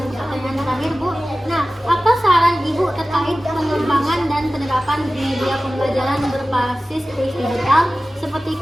ke pertanyaan terakhir, Bu. Nah, apa saran Ibu terkait pengembangan dan penerapan media pembelajaran berbasis kuis digital seperti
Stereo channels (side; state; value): both; normal; correlation 0.96